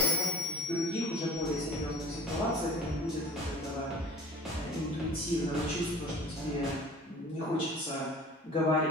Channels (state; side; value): normal; both; correlation 0.43